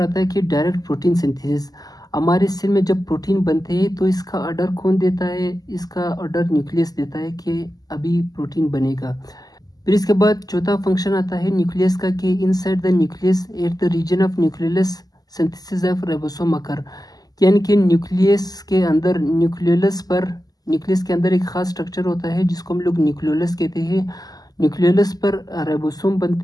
आता है कि डायरेक्ट प्रोटीन सिंथेसिस। हमारे सेल में जब प्रोटीन बनते हैं तो इसका ऑर्डर कौन देता है? इसका ऑर्डर न्यूक्लियस देता है कि अभी प्रोटीन बनेगा। फिर इसके बाद चौथा फंक्शन आता है न्यूक्लियस का कि inside the nucleus at the region of nucleus synthesis of ribosome occur, यानी कि न्यूक्लियस के अंदर न्यूक्लियस के अंदर एक खास स्ट्रक्चर होता है जिसको हम लोग न्यूक्लियोलस कहते हैं। न्यूक्लियोलस पर राइबोसोम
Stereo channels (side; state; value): right; late; 0.18 ms